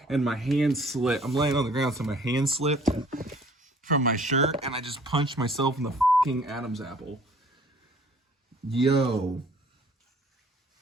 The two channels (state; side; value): normal; both; correlation 0.55